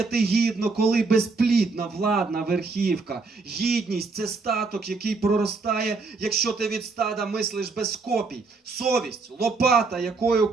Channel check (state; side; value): quieter; left; 4.1 dB